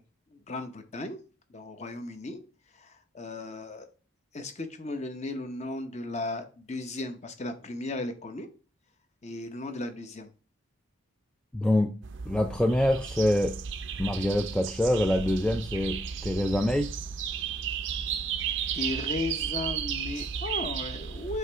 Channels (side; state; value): both; normal; correlation 0.73